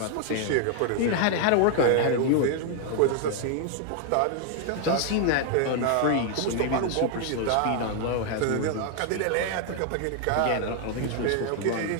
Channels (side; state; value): both; different; correlation 0.00